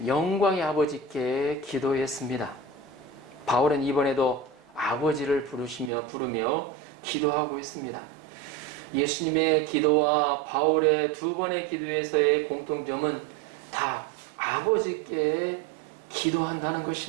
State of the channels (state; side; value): drops out; left; at 5.9 s